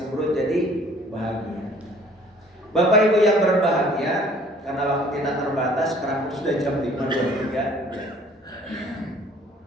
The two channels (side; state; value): both; normal; correlation 0.55